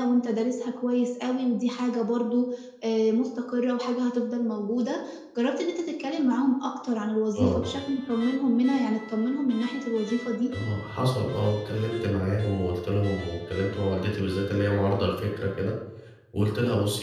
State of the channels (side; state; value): both; identical; correlation 1.00